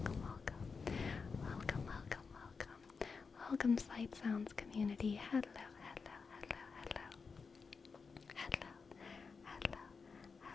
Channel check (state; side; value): quieter; right; 5.1 dB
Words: Welcome Slight Sounds community. Hello.